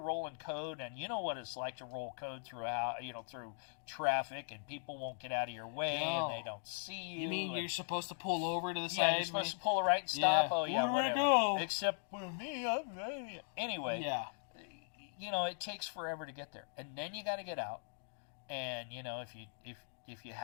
code, and you know what it's like to roll code through traffic, and people won't get out of your way, and they don't see you. You mean you're supposed to pull over to the side? Yeah, you're supposed to pull a right and stop. Yeah. Oh, yeah, Where do I whatever. go? Except for me. Anyway. Yeah. It takes forever to get there. And then you got to get out. And, if you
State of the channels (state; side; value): silent; right; digital silence